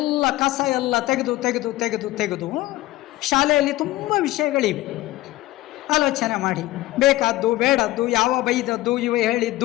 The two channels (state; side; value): quieter; right; 17.4 dB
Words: ಕಸ ಎಲ್ಲ ತೆಗೆದು ಶಾಲೆಯಲ್ಲಿ ತುಂಬ ವಿಷಯಗಳಿವೆ. ಆಲೋಚನೆ ಮಾಡಿ, ಬೇಕಾದ್ದು ಬೇಡದ್ದು, ಯಾವ ಬೈದದ್ದು, ಇವ